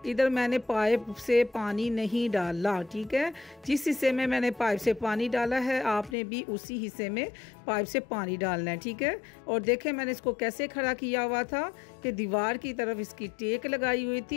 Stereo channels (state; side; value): drops out; right; at 6.2 s